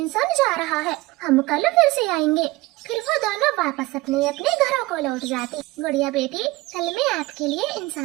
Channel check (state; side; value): quieter; left; 20.2 dB